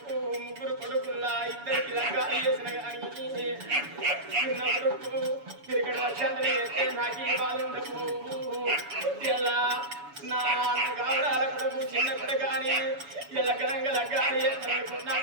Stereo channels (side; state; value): left; late; 7.1 ms